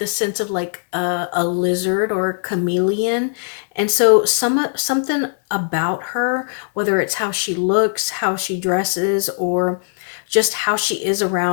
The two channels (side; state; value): right; silent; digital silence